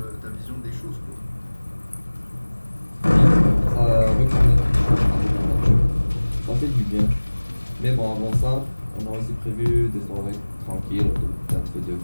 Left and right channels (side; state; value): both; inverted; correlation -1.00